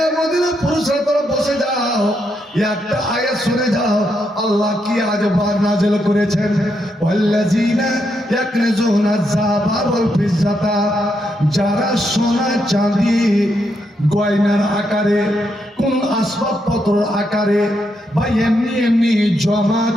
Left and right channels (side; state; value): both; normal; correlation 0.80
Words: মদিনার পুরুষরা তোরা বসে যাও, একটা আয়াত শুনে যাও আল্লাহ কি আজবার নাযিল করেছেন। ওয়াল্লাযিনা ইয়াকনিজুনা যাবা ওয়াল ফিজ্জাতা, যারা সোনা চাঁদি গয়নার আকারে কোন আসবাবপত্র আকারে বা এমনি এমনি জমা